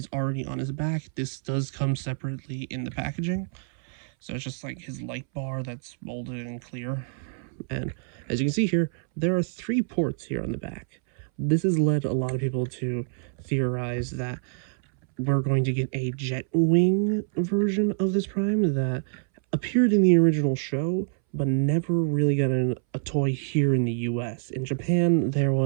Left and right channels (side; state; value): left; silent; 61 dB below the other